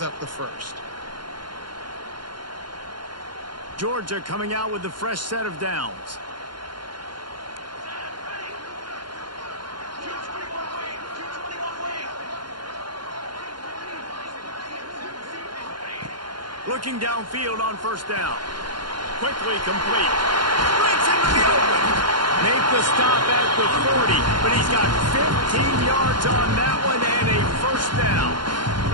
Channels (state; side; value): late; left; 0.71 ms